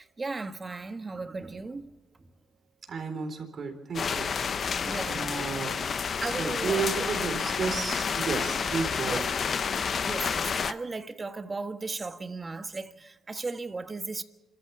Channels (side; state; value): both; normal; correlation 0.80